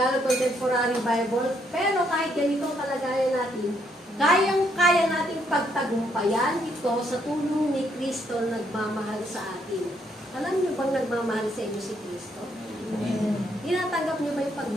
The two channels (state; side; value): normal; both; correlation 0.72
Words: Contemporary Bible, pero kahit ganito kalagayan natin, kayang-kaya nating pagtagumpayan ito sa tulong ni Kristo nagmamahal sa atin. Alam niyo bang nagmamahal sa inyo si Kristo? Tinatanggap niyo ba yung